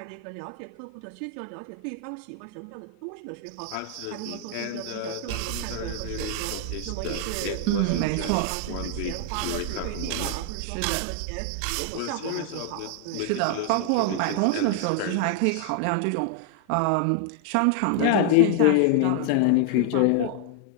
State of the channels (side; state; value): both; different; correlation 0.00